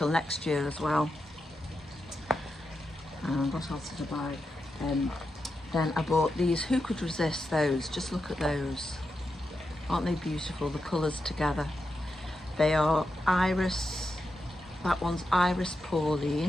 next year as well. And what else did I buy? Then I bought these. Who could resist those? Just look at those. Aren't they beautiful, the colours together? They are Iris, that one's Iris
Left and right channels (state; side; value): normal; both; correlation 0.87